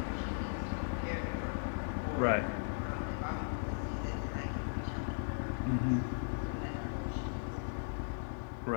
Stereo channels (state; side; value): silent; right; digital silence